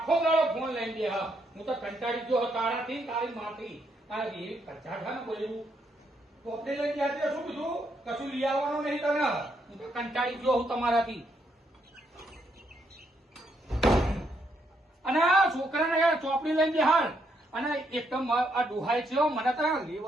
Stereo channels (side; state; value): both; normal; correlation 0.76